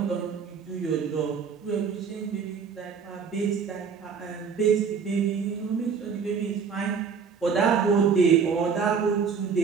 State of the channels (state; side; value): quieter; left; 6.2 dB